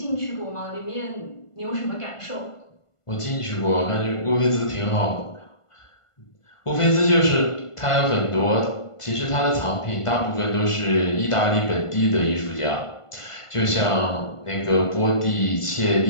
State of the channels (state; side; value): late; right; 1.5 ms